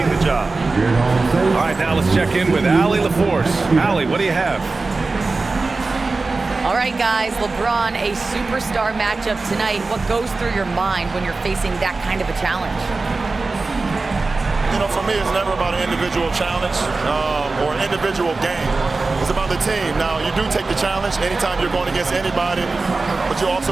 the job. All right, now let's check in with Allie LaForce. Allie, what do you have? All right, guys, LeBron, a superstar matchup tonight. What goes through your mind when you're facing that kind of a challenge? You know, for me, it's never about an individual challenge or an individual game. It's about the team. Now, you do take the challenge anytime you're going against anybody, but you also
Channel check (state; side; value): quieter; left; 3.7 dB